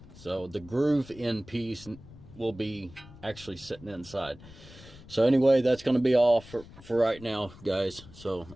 So the groove in piece will be actually sitting inside. So anyway, that's going to be all for right now, guys. So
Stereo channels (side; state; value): left; noise; rumble, 20 dB below the sound